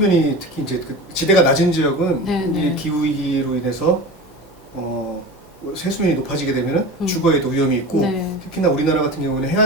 특히 이제 지대가 낮은 지역은 이 기후위기로 인해서 해수면이 높아지게 되면 주거에도 위험이 있고 특히나 우리나라 같은 경우는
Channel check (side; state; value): both; normal; correlation 0.32